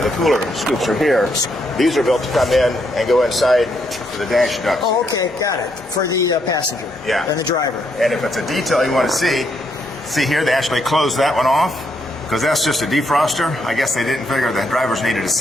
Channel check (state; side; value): normal; both; correlation 0.76